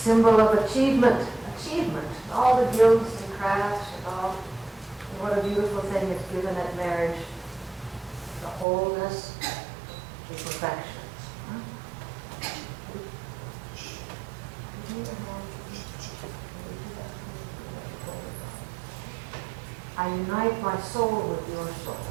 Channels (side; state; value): left; drops out; at 8.7 s